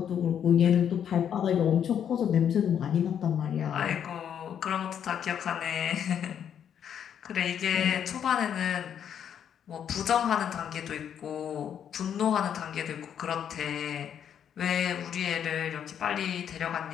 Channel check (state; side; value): quieter; right; 8.8 dB